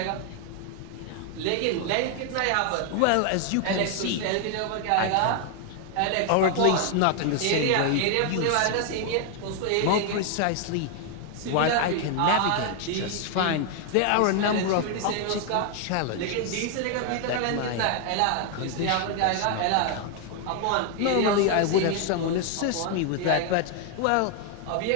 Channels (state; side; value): different; both; correlation 0.00